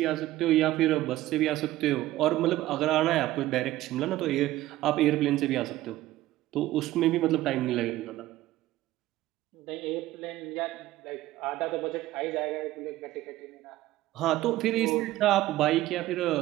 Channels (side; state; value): left; quieter; 15.7 dB